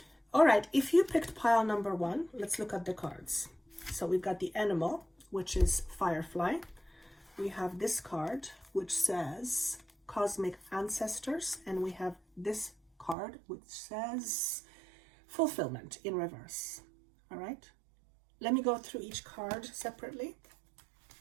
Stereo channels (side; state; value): left; drops out; at 13.2 s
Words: All right, if you picked pile number 1, let's look at the cards. So we've got the animal, which is Firefly. We have this card, which says Cosmic Ancestors, and we have this card, which says Fulfillment in reverse. All right. Let me go through each card separately.